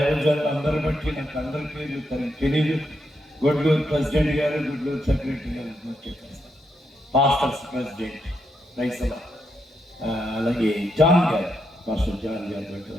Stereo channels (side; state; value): both; normal; correlation 0.81